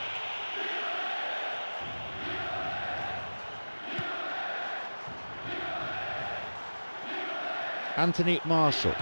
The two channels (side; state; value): both; inverted; correlation -1.00